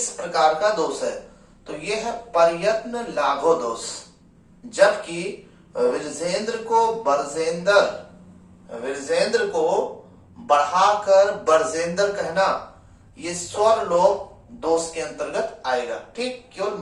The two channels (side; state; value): both; identical; correlation 1.00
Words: प्रकार का दोष है? तो यह है प्रयत्न लाघो दोष। जबकि विरजेंद्र को बढ़ाकर बरजेंद्र कहना ये स्वर लोप दोष के अंतर्गत आएगा। ठीक, केवल